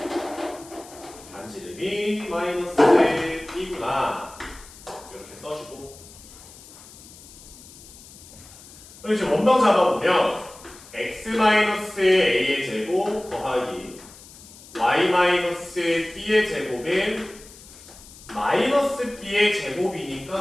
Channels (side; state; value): left; noise; hiss, 20 dB below the sound